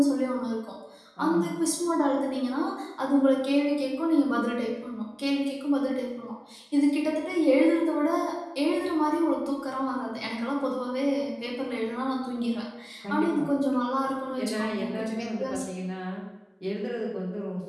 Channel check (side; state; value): both; identical; correlation 1.00